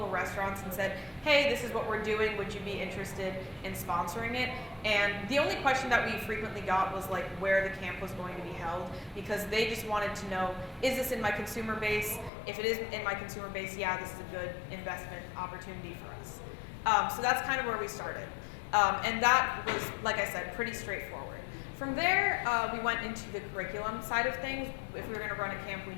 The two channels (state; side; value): drops out; right; at 12.3 s